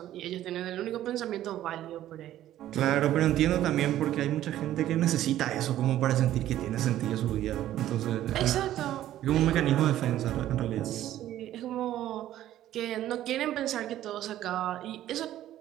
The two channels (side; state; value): left; quieter; 13.0 dB